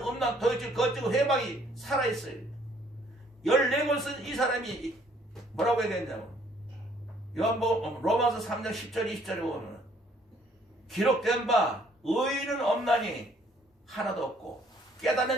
음란, 도둑질, 거짓, 회방이 살아있어요. 14권 쓴 이 사람이 뭐라고 얘기했냐면 로마서 3장 10절 20절에 보면 기록된 바 의인은 없나니 하나도 없고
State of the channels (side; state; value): both; normal; correlation 0.62